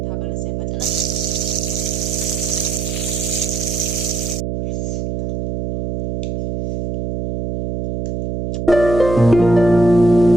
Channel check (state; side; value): noise; right; hum, 4 dB below the sound